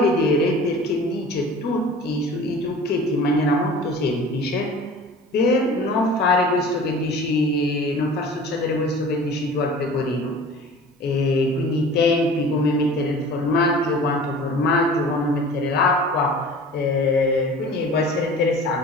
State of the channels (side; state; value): both; normal; correlation 0.42